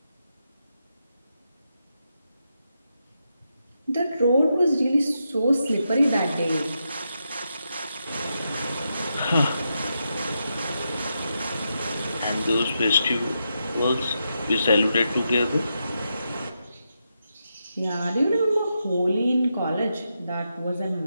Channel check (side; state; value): both; inverted; correlation -0.85